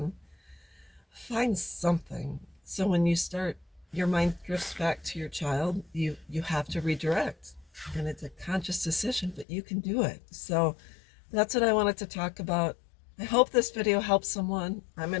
Find something. So when you start, your mind drifts back to your child. You have to redirect, and it's a conscious decision, but you can do it. So that's what I wanted to talk about. I hope this video helps someone. I'm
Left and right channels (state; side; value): drops out; right; at 9.5 s